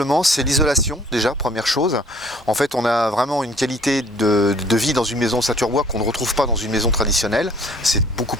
c'est l'isolation, déjà, première chose. En fait, on a vraiment une qualité de vie dans une maison ossature bois qu'on ne retrouve pas dans une maison traditionnelle. C'est beaucoup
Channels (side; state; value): both; normal; correlation 0.56